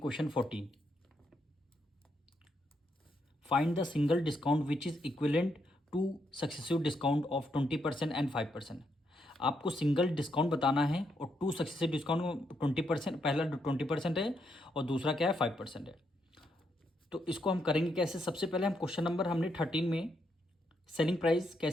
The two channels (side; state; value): both; normal; correlation 0.78